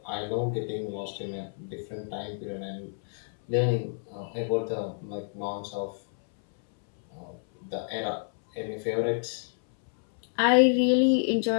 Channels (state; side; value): silent; right; 59 dB below the other